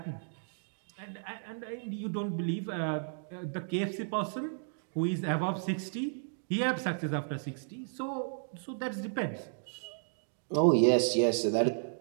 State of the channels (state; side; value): silent; left; digital silence